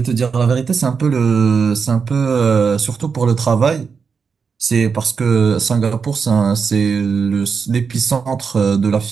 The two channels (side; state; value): left; quieter; 5.7 dB